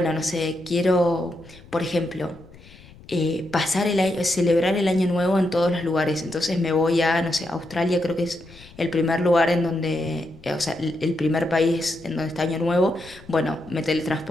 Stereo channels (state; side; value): noise; left; rumble, 22 dB below the sound